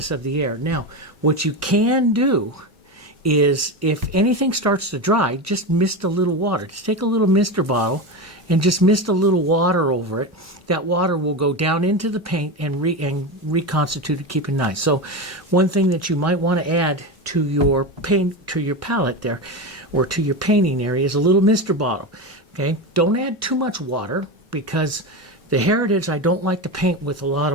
of the air. Now, what you can do is if anything starts to dry, just mist a little water. Just take a little mister bottle and just mist a little water over it. That water will go down into the paint and reconstitute it, keep it nice. So one thing that you might want to add to your palette there, or to your painting area, is a little mister bottle. Okay, don't add too much water because the Heritage, I don't like to paint with a lot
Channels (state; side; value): normal; both; correlation 0.19